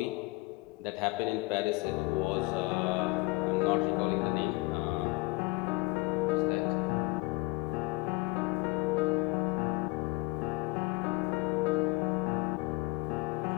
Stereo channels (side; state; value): right; quieter; 23.3 dB